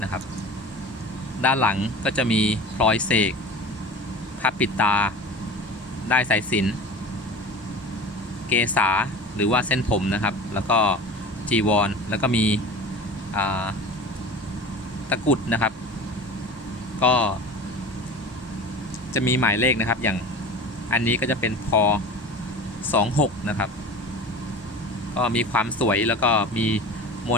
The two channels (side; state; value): both; normal; correlation 0.36